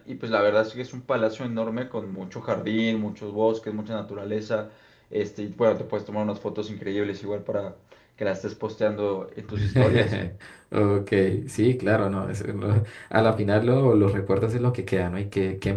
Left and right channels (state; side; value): identical; both; correlation 1.00